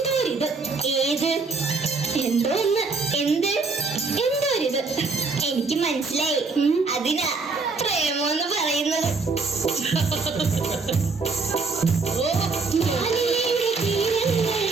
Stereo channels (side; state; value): left; quieter; 4.2 dB